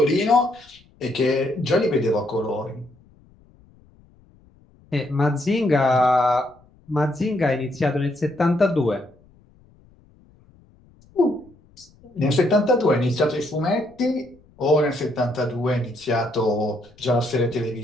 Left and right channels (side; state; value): left; noise; rumble, 29 dB below the sound